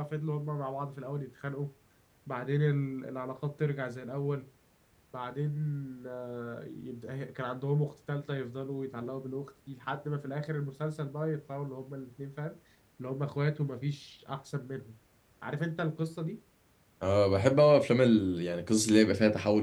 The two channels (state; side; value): identical; both; correlation 1.00